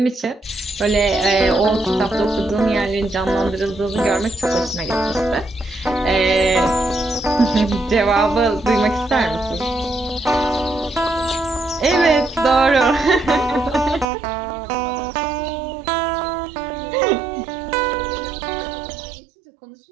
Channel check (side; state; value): left; drops out; at 14.1 s